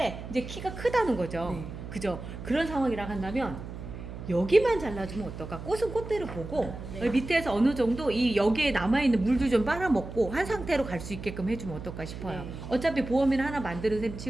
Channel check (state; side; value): noise; right; hum, 10 dB below the sound